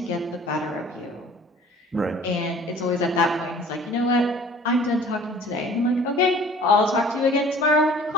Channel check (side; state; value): both; normal; correlation 0.50